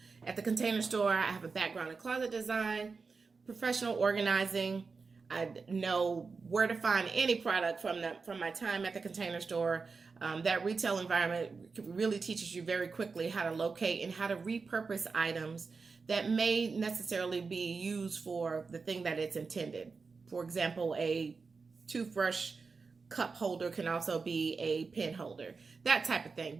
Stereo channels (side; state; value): left; quieter; 4.6 dB